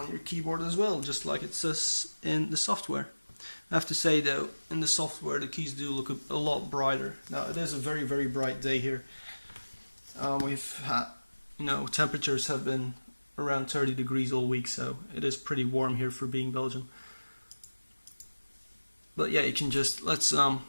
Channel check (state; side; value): inverted; both; correlation -1.00